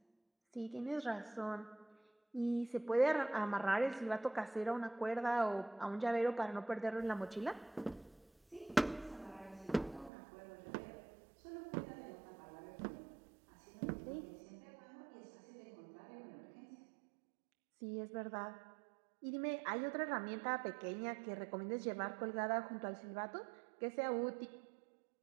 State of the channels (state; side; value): drops out; left; at 10.1 s